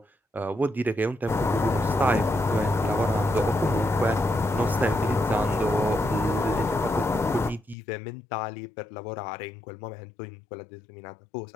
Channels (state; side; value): drops out; right; at 7.8 s